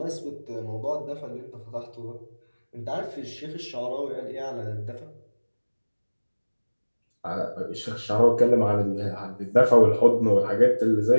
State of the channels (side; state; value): both; inverted; correlation -1.00